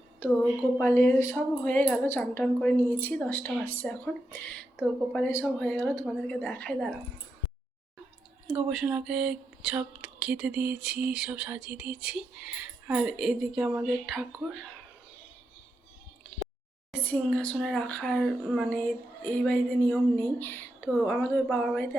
তো গোপালের সব হয়ে গেল, চান টান করে নিয়েছি, 10টা বাজছে এখন। তো গোপালের সব হয়ে গেল, তোমাদেরকে দেখাই, দাঁড়াও। গোপালকে সব খেতে দিয়েছি, সব সাজিয়ে দিয়েছি। আর এদিকে আমাদের ঠাকুর সিংহাসনে রাখার, মানে এই বাড়িতে নিয়ম নেই, তো আমাদের বাবার বাড়িতে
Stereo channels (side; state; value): both; normal; correlation 0.85